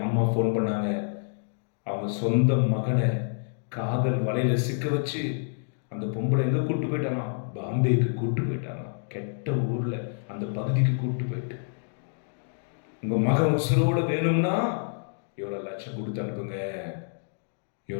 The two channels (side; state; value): right; silent; digital silence